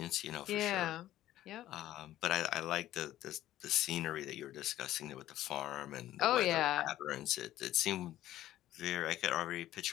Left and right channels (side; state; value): right; quieter; 13.8 dB